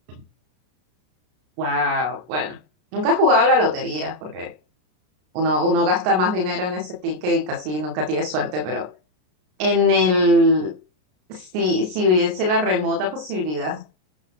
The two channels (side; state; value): left; late; 33 ms